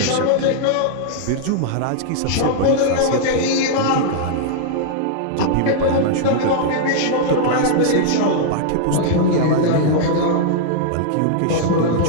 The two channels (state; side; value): different; both; correlation -0.01